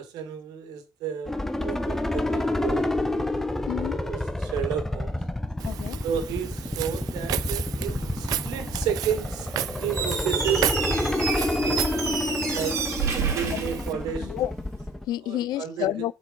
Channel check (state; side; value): normal; both; correlation 0.59